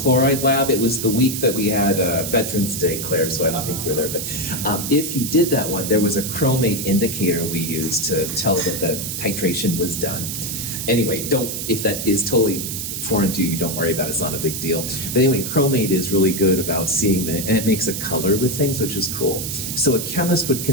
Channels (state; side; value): noise; right; hiss, 5 dB below the sound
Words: lab. It was the week that we had Veterans Day, Claire, so I don't think you were there. But if you did that one, there was a chromate indicator we used to tell that the titration was done. Anyway, if that is totally foreign to you, don't worry about it, it's not a big deal. But anyway, chromate is really good about seeing and it makes a color with things, which is cool. So a chemist would